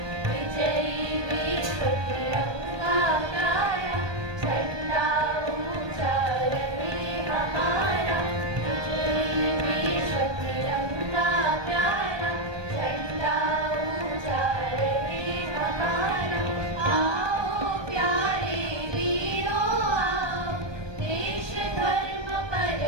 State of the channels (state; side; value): late; left; 1.2 ms